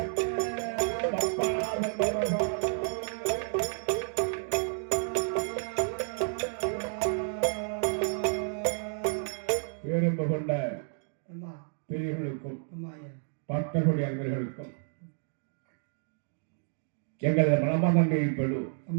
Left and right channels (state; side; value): silent; left; digital silence